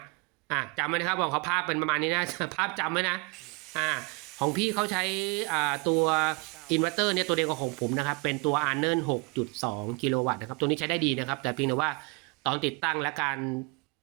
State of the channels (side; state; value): left; quieter; 29.0 dB